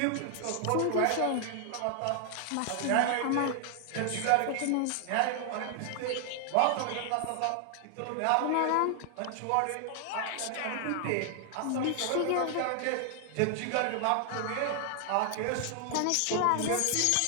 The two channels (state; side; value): different; both; correlation 0.00